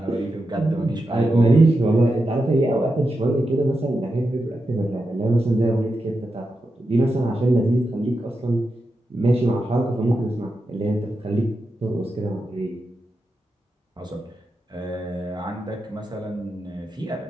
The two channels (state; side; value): normal; both; correlation 0.88